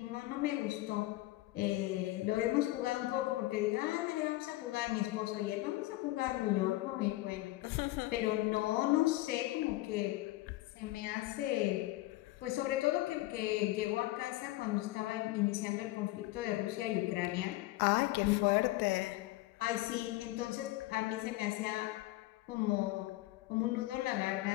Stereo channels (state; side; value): quieter; right; 18.2 dB